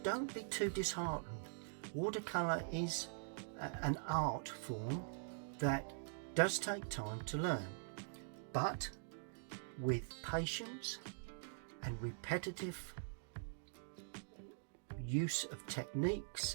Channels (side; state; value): left; silent; digital silence